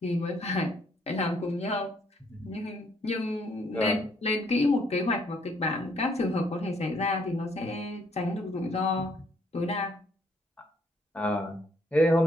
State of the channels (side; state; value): both; normal; correlation 0.68